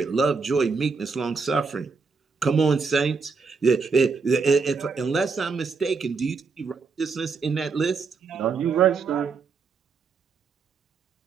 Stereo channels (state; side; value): quieter; left; 4.8 dB